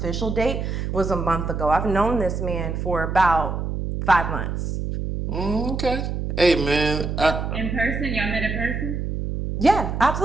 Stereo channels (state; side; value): noise; right; hum, 3 dB below the sound